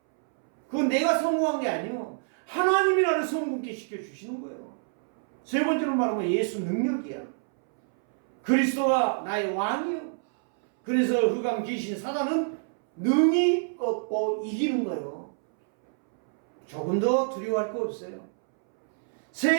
그건 내가 성공한 게 아니에요. 하나님이 나를 성공케 시켜주시는 거예요. 세 번째로 말하면 예수 능력이야. 그리스도가 나의 왕이요. 그래서 흑암 귀신 사단은 능히 꺾고 이기는 거예요. 조금 더 두려워할 거 없어요.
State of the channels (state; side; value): silent; left; 60 dB below the other